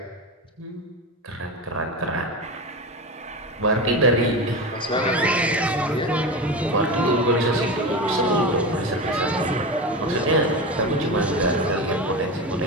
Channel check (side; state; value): both; normal; correlation 0.24